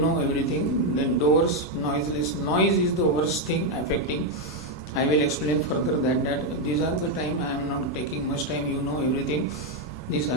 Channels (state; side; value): normal; both; correlation 0.03